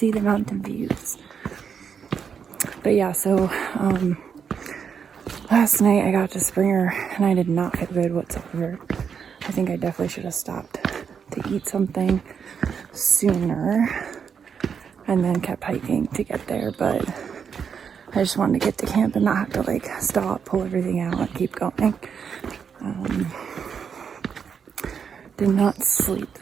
the mountain views. But yeah, so last night I got to Springer and I did not feel good whatsoever. I think I definitely should have stopped to eat something sooner and then kept hiking to get there, but I just wanted to get to camp and not have to like stop, pull everything out, and keep going. Did not sleep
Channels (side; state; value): left; quieter; 6.9 dB